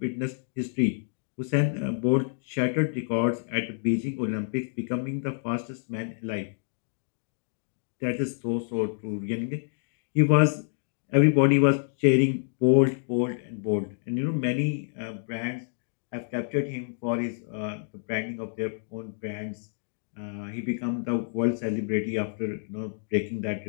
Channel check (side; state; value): right; silent; digital silence